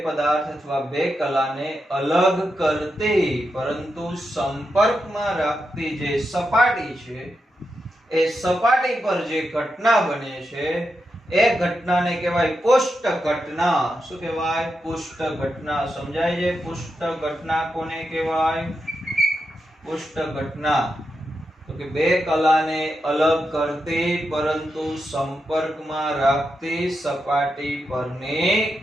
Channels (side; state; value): both; normal; correlation 0.86